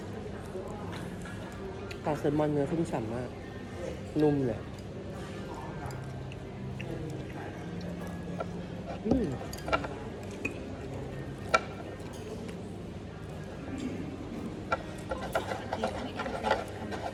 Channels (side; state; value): both; identical; correlation 1.00